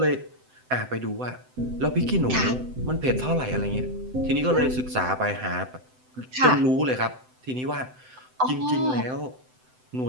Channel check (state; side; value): late; left; 7.8 ms